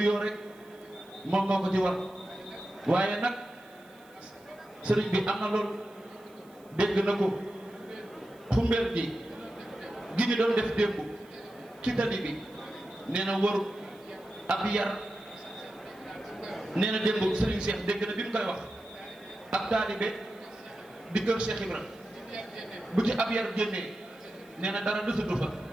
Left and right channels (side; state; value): right; noise; hiss, 29 dB below the sound